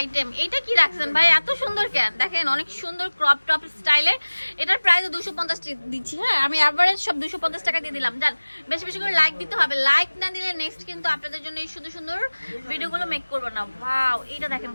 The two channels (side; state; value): both; inverted; correlation -1.00